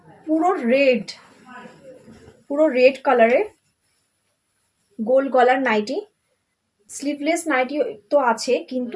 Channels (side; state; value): both; identical; correlation 1.00